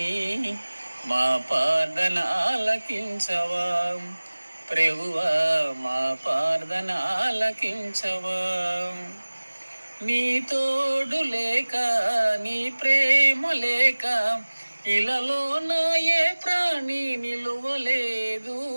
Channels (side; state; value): both; inverted; correlation -1.00